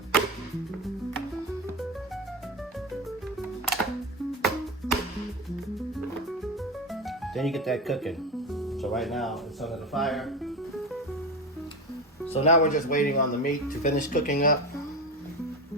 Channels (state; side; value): normal; both; correlation 0.21